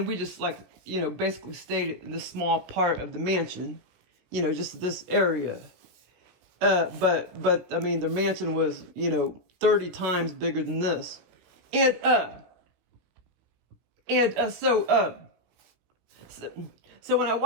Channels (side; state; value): left; late; 16 ms